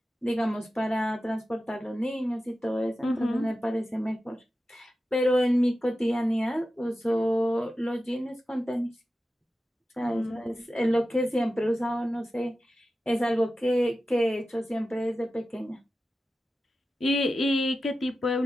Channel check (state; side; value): normal; both; correlation 0.93